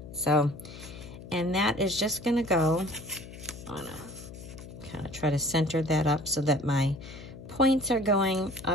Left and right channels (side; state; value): left; noise; hum, 14 dB below the sound